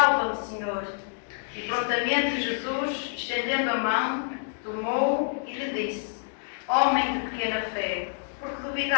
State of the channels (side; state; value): right; silent; digital silence